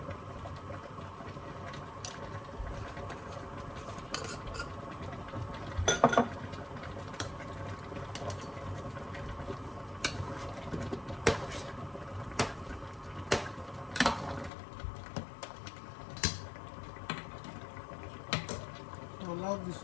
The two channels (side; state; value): right; drops out; at 14.5 s